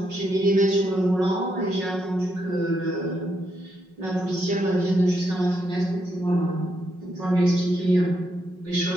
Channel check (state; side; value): late; left; 5.4 ms